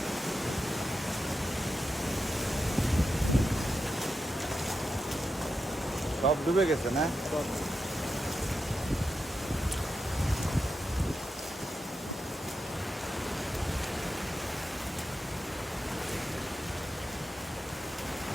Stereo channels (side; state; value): both; normal; correlation 0.88